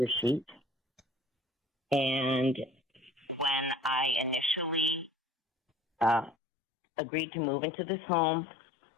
sheet. And when I initially agreed to move into this home,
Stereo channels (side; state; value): right; drops out; at 6.4 s